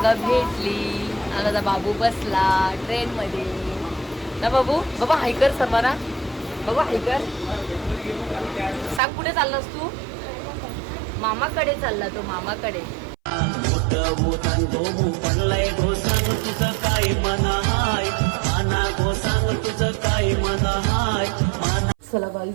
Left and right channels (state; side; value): drops out; left; at 9.0 s